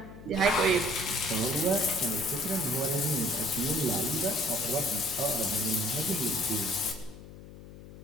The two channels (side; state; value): left; noise; hum, 16 dB below the sound